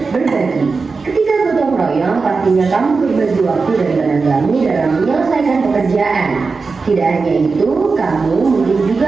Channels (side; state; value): left; quieter; 4.4 dB